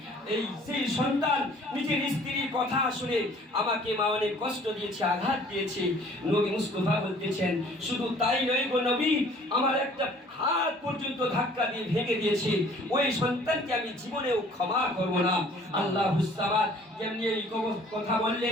সেই সন্তান নিজের স্ত্রীর কথা শুনে আমাকে মা অনেক কষ্ট দিয়েছে, আঘাত দিয়েছে। নবী মুস্তাফা বলতেছেন, শুধু তাই নয় গো নবী, আমার একটা হাত পর্যন্ত ধাক্কা দিয়ে ভেঙে দিয়েছে। ওই সন্তানকে আমি জীবনেও ক্ষমা করব না। আল্লাহুস সামাদ যেমনি এই কথা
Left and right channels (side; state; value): both; normal; correlation 0.54